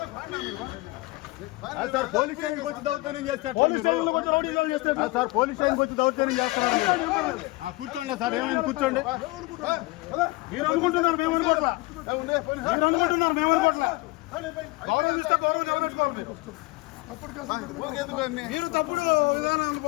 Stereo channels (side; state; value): right; quieter; 22.5 dB